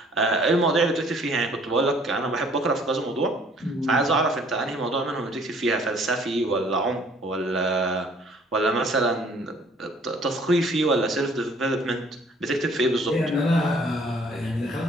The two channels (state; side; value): normal; both; correlation 0.58